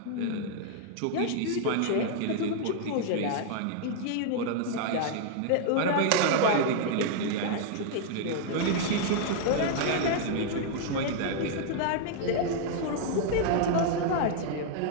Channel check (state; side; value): different; both; correlation -0.01